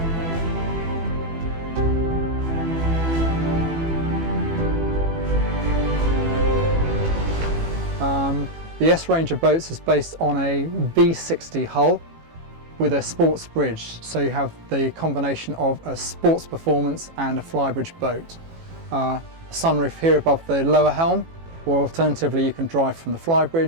The S range of boats is based on a V60 hull with a Sportsbridge, so you have the combination of a sports performance and a flybridge boat. A sunroof here above the lower helm, or alternatively you can drive from the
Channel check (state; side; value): late; left; 18 ms